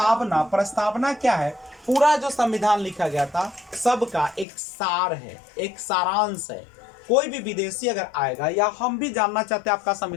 प्रस्तावना क्या है, पूरा जो संविधान लिखा गया था सबका एक सार है, एक सारांश है। कोई भी विदेशी अगर आएगा, या हम भी जानना चाहते हैं आपका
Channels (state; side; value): drops out; right; at 4.5 s